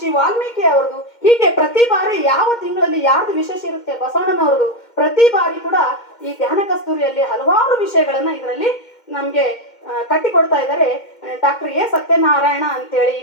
ವಾಲ್ಮೀಕಿ ಅವ್ರದ್ದು, ಹೀಗೆ ಪ್ರತಿ ಬಾರಿ ಯಾವ ತಿಂಗಳಲ್ಲಿ ಯಾರ್ದು ವಿಶೇಷ ಇರುತ್ತೆ, ಬಸವಣ್ಣನವ್ರದ್ದು, ಪ್ರತಿ ಬಾರಿ ಕೂಡ ಈ ಧ್ಯಾನ ಕಸ್ತೂರಿಯಲ್ಲಿ ಹಲವಾರು ವಿಷಯಗಳನ್ನ ಇದರಲ್ಲಿ ನಮ್ಗೆ ಕಟ್ಟಿಕೊಡ್ತಾ ಇದ್ದಾರೆ. ಡಾಕ್ಟರ್ ಎ ಸತ್ಯನಾರಾಯಣ ಅಂತೇಳಿ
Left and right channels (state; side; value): late; right; 2.1 ms